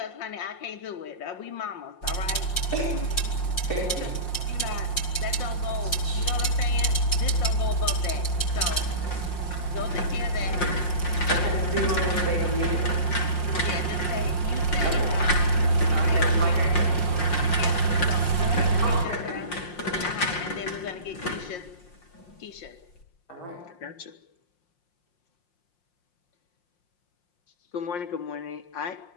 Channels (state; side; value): late; right; 5.6 ms